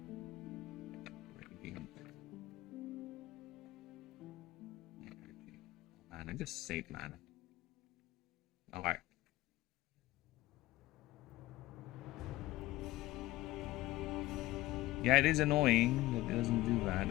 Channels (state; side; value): quieter; right; 17.4 dB